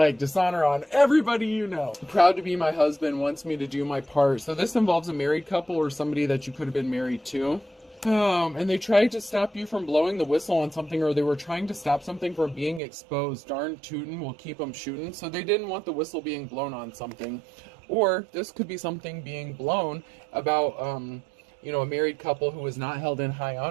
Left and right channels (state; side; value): drops out; left; at 12.8 s